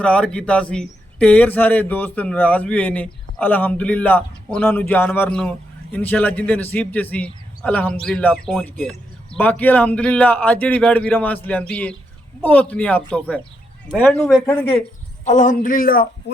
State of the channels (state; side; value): normal; both; correlation 0.80